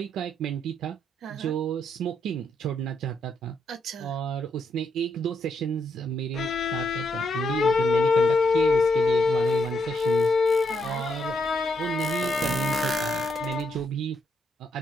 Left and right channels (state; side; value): normal; both; correlation 0.77